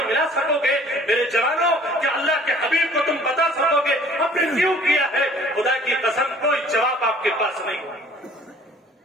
ملا سکو گے؟ میرے جوانوں، کیا اللہ کے حبیب کو تم بتا سکو گے آپ نے کیوں کیا ہے؟ خدا کی قسم کوئی جواب آپ کے پاس نہیں۔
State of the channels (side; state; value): both; normal; correlation 0.53